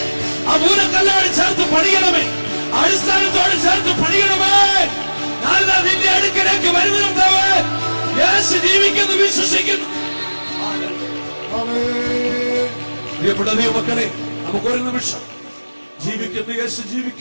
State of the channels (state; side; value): inverted; both; correlation -1.00